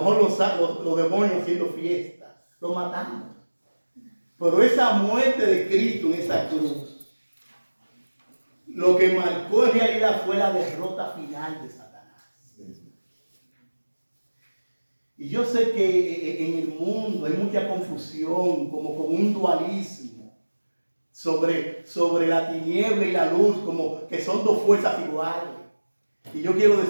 los demonios haciendo fiesta, lo matamos. Pero esa muerte de Cristo en esa cruz, lo que marcó en realidad fue la derrota final de Satanás. Y yo sé que en el mundo hay mucha confusión, como con un dualismo sobre la tiniebla y la luz, como que son dos fuerzas iguales. Y yo quiero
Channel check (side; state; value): both; inverted; correlation -1.00